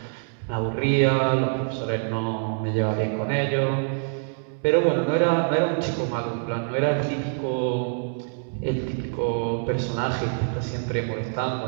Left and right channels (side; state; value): left; silent; digital silence